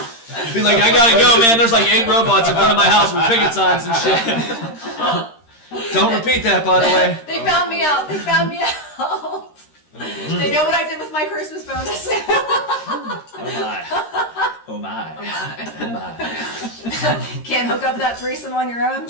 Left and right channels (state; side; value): late; right; 13 ms